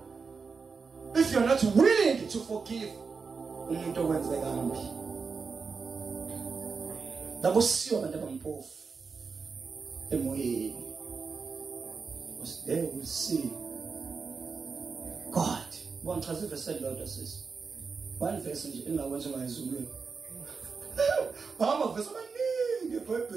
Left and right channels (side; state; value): left; quieter; 5.0 dB